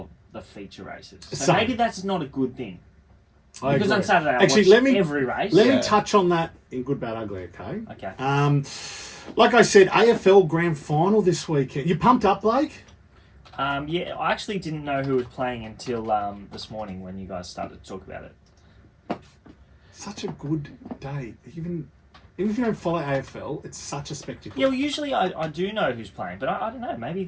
the feature races. So Same. maybe that's not a good thing. I Because agree. on Saturday I Actually, watch every race. Let Yeah. me touch on that in Good, Bad, Ugly, okay? Okay. Like I said, AFL Grand Final this weekend. You pumped up, Blake? Yeah, I actually didn't know who was playing until this morning when you guys started to talk about it. Such a good day. Even if you don't follow AFL, it's such a spectacle. Yeah, well, usually I do know who's playing, but I don't know. Maybe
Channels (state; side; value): identical; both; correlation 1.00